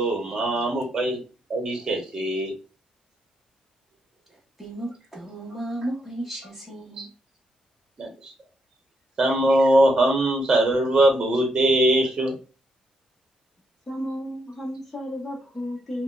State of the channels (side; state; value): both; normal; correlation 0.79